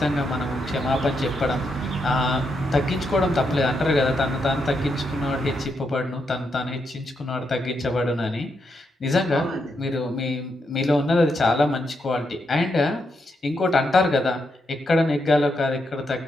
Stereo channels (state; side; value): normal; both; correlation 0.81